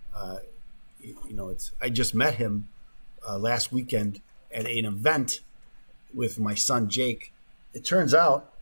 I just met him last weekend at an event with my son Jake. It turns out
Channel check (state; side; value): inverted; both; correlation -1.00